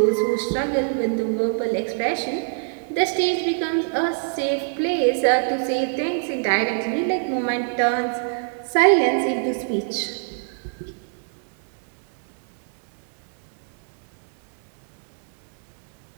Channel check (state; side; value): silent; left; 63 dB below the other